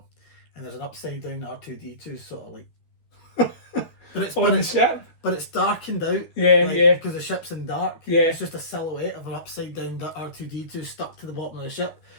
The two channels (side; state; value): right; late; 13 ms